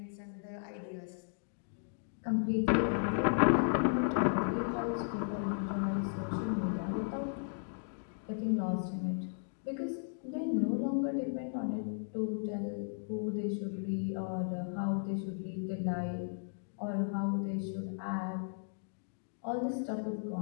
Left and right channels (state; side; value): silent; right; digital silence